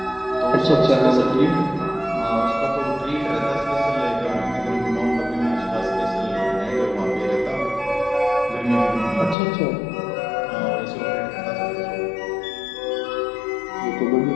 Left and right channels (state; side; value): drops out; right; at 9.3 s